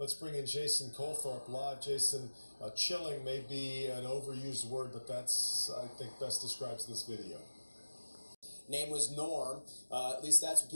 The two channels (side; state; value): both; inverted; correlation -1.00